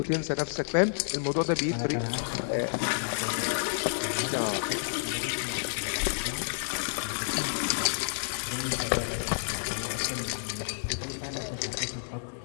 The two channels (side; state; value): right; silent; digital silence